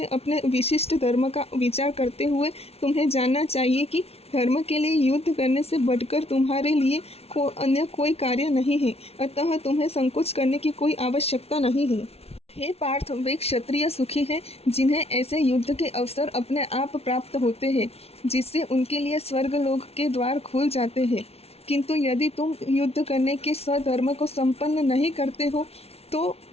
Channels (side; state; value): right; late; 0.30 ms